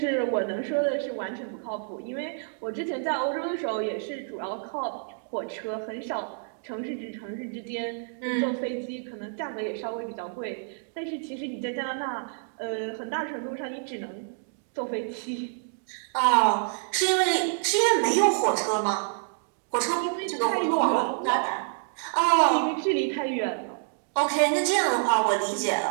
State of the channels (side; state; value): left; silent; digital silence